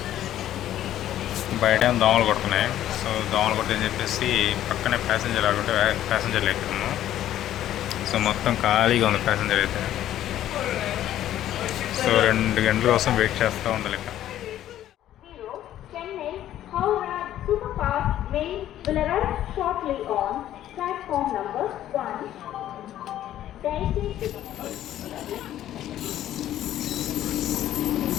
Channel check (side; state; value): right; quieter; 12.3 dB